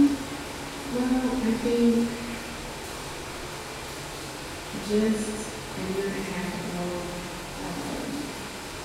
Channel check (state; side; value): identical; both; correlation 1.00